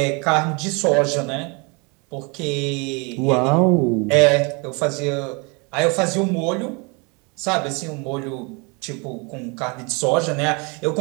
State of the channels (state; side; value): quieter; left; 30.8 dB